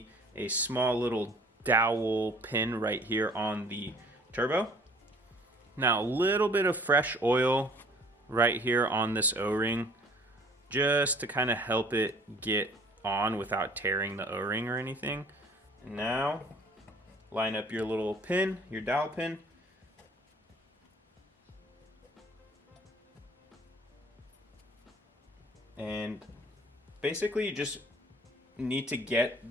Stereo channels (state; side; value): normal; both; correlation 0.54